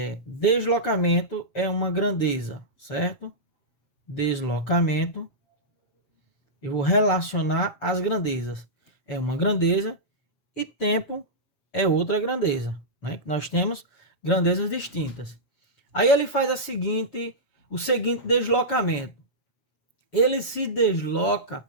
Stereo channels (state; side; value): late; right; 7.0 ms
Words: Deslocamento é uma grandeza, certo? Deslocamento, eu vou relacionar as grandezas. É uma grandeza e tempo é outra grandeza, né? Que nós temos grandezas distintas. Aí ele faz o seguinte deslocamento. Ele se desloca